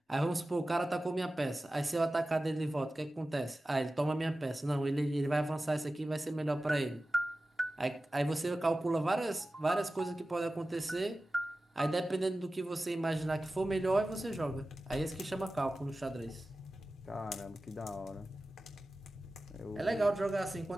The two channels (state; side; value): normal; both; correlation 0.95